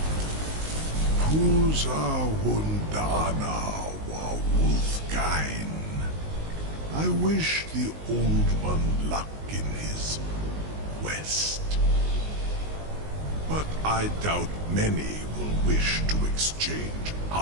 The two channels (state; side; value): late; left; 19 ms